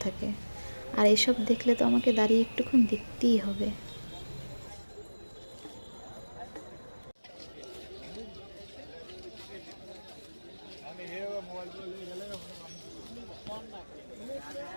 থাকে। আর এসব দেখলে তো আমাকে দাঁড়িয়ে একটুক্ষণ দেখতেই হবে।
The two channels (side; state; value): both; inverted; correlation -1.00